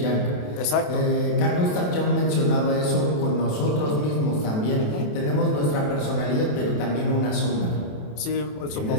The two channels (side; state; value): right; late; 27 ms